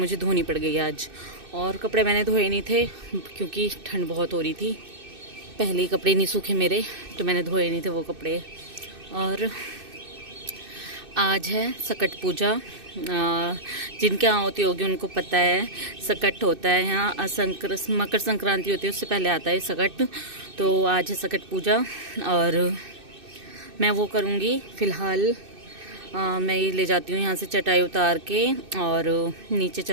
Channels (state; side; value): late; left; 2.6 ms